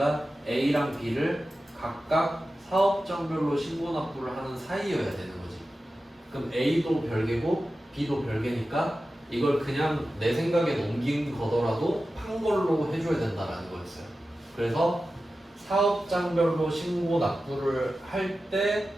A랑 B를 각각 사업장별로 신고 납부를 하는 사이여야 되는 거지. 그럼 A도 별개고 B도 별개니까 이걸 그냥 내 생각에 넘긴 거더라도 판 걸로 해줘야 된다라는 거였어요. 그래서 사업장별로 신고 납부를 할 때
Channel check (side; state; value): both; normal; correlation 0.93